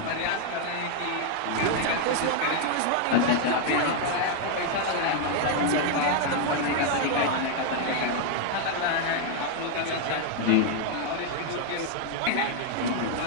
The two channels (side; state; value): both; different; correlation 0.00